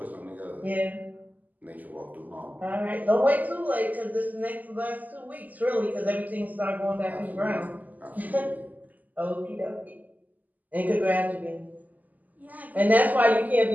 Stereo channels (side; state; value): left; late; 0.081 ms